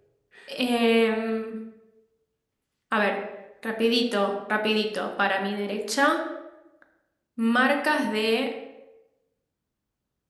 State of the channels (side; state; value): both; identical; correlation 1.00